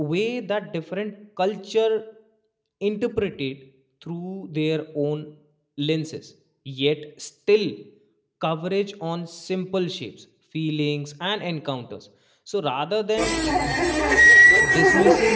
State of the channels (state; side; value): identical; both; correlation 1.00